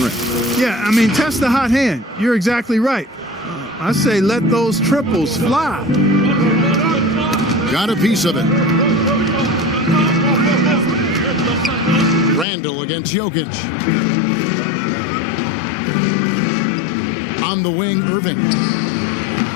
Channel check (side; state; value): right; drops out; at 12.5 s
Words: Yeah, I mean, test the hot hand. You're exactly right. I say let those triples fly. Got a piece of it. Randall against Jokic. On the wing, Irving.